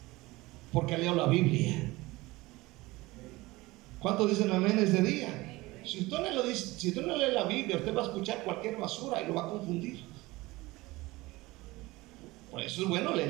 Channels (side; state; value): left; quieter; 20.7 dB